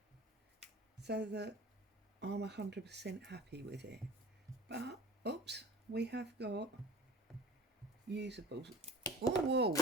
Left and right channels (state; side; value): normal; both; correlation 0.40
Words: so that I'm 100% happy with it. But, oops, we have got usables. Oh, whoa!